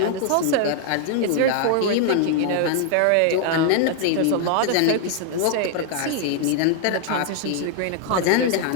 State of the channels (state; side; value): different; both; correlation 0.00